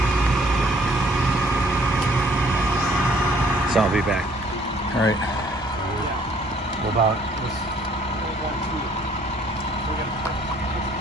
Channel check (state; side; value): normal; both; correlation 0.61